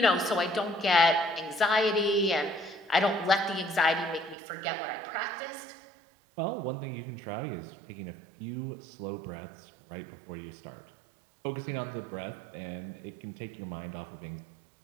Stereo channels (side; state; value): left; drops out; at 4.4 s